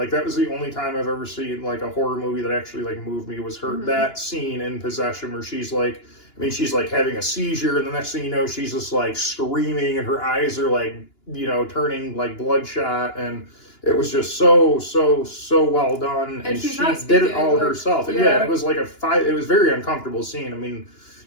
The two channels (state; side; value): late; right; 2.9 ms